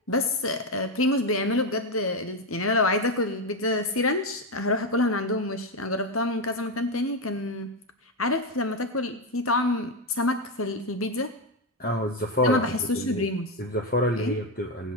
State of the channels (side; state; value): both; normal; correlation 0.08